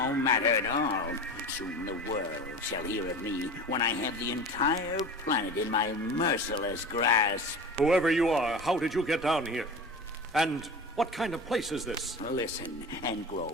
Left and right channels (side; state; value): both; normal; correlation 0.32